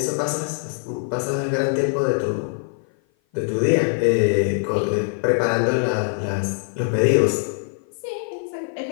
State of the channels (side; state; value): right; silent; 55 dB below the other